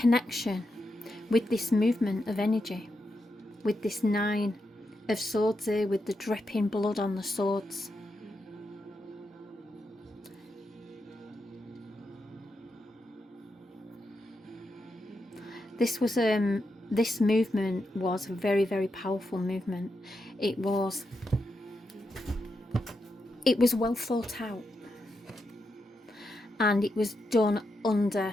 with this movement of energy, with this 9 of swords here, with the dripping blood on the swords. This movement was a very, very powerful movement. It was well thought out, and it was done under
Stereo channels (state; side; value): normal; both; correlation 0.85